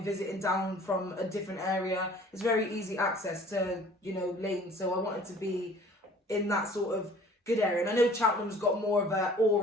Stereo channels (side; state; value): both; normal; correlation 0.50